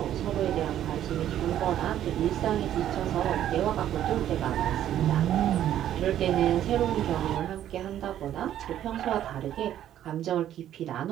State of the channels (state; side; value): quieter; left; 11.4 dB